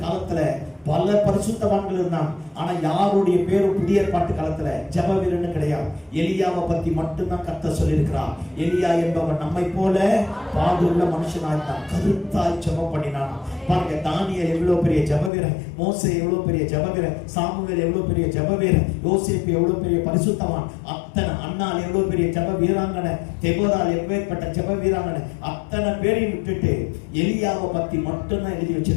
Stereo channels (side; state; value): right; drops out; at 15.3 s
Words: காலத்துல பல பரிசுத்தவான்கள் இருந்தாங்க. ஆனா யாருடைய பேரும் புதிய ஏற்பாட்டு காலத்துல ஜெப வீரன் கிடையாது. எலியாவை பத்தி மட்டும்தான் கர்த்தர் சொல்லியிருக்கிறார். எலியா என்பவன் நம்மை போல பாடுள்ள மனுஷனாயிருந்தான், கருத்தாய் ஜெபம் பண்ணினான். பாருங்க, தானியேல் எவ்வளவு பெரிய ஜெப வீரன், மோசே எவ்வளவு பெரிய ஜெப வீரன், சாமுவேல் எவ்வளவு பெரிய ஜெப வீரன், யோசேப்பு எவ்வளவு பெரிய பரிசுத்தவான், அத்தனை அன்னாள் எவ்வளவு பெரிய ஜெப வீராங்கனை, தெபோராள் எப்பேற்பட்ட ஜெப வீராங்கனை, அத்தனை பேரையும் விட்டுட்டு எலியாவை பத்தி மட்டும்தான் எழுதி